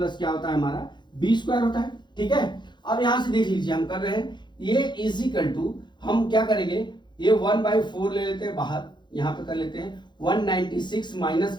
क्या होता है हमारा b स्क्वायर होता है। ठीक है, अब यहां से देख लीजिए हम कर रहे हैं a इज इक्वल टू, हम क्या करेंगे ये 1/4 ले लेते हैं बाहर, यहां पे कर लेते हैं 196 माइनस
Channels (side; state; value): right; late; 0.22 ms